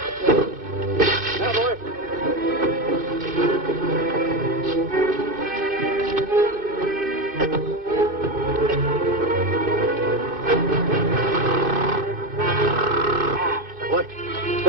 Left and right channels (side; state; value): left; late; 2.5 ms